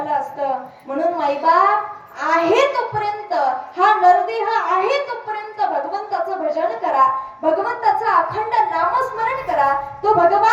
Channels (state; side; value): identical; both; correlation 1.00